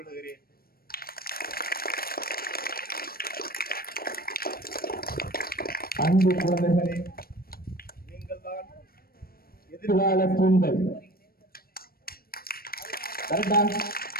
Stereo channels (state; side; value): late; right; 0.44 ms